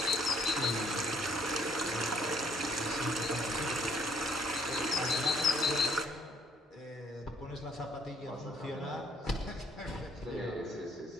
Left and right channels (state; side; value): normal; both; correlation 0.64